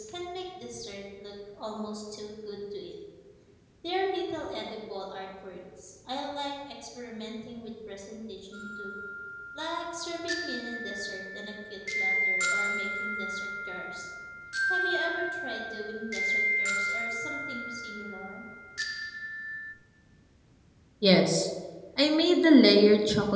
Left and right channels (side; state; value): both; identical; correlation 1.00